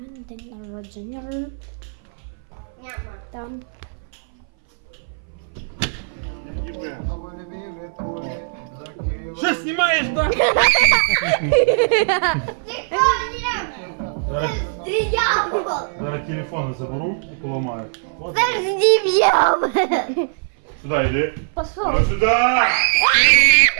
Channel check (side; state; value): left; silent; 60 dB below the other